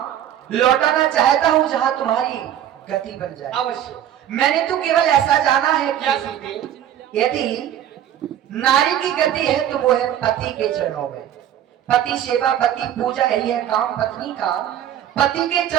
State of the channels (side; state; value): left; quieter; 10.8 dB